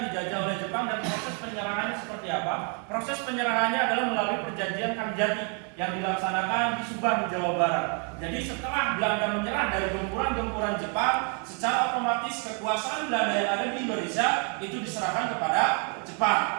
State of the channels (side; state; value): left; quieter; 38.8 dB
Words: dijajah oleh Jepang, dan proses penyerahannya seperti apa? Proses penyerahannya adalah melalui perjanjian Kalijati yang dilaksanakan di Subang, Jawa Barat. Jadi setelah Belanda menyerah dari gempuran-gempuran Jepang, secara otomatis kekuasaan Belanda yang ada di Indonesia itu diserahkan kepada